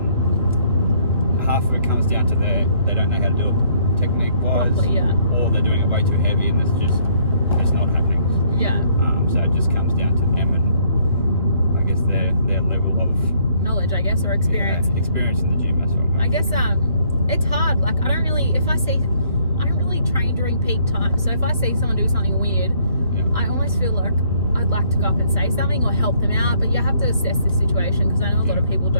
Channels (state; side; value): inverted; both; correlation -0.65